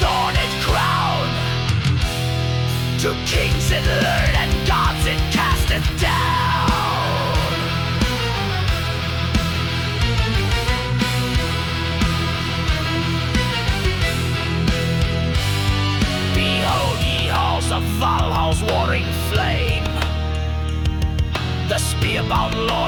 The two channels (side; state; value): both; identical; correlation 1.00